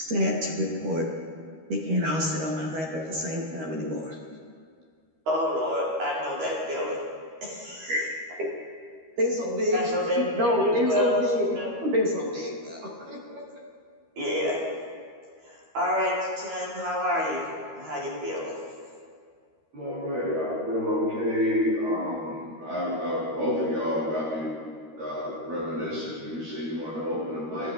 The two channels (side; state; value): left; late; 13 ms